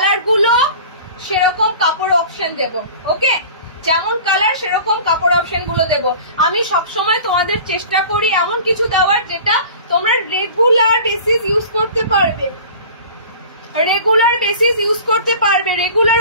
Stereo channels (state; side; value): inverted; both; correlation -0.41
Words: গুলো সেরকম কাপড় অপশন দেব। ওকে, যেমন কালার সেরকম কাপড় অপশন গুলো দেব। আমি সবসময় তোমাদের চেষ্টা করি এমন কিছু দেওয়ার যেটা তোমরা রেগুলার বেসিস ইউজ করতে পারবে, রেগুলার